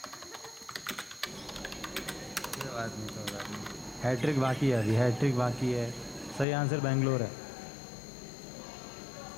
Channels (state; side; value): drops out; right; at 6.5 s